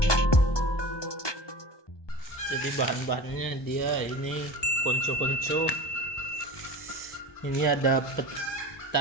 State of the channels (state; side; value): late; right; 1.2 ms